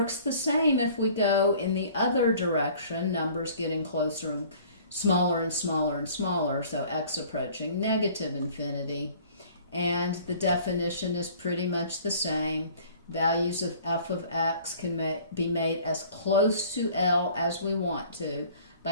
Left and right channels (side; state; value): both; inverted; correlation -0.51